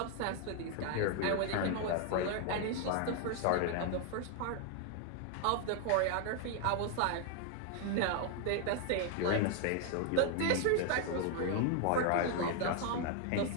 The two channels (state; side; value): different; both; correlation 0.01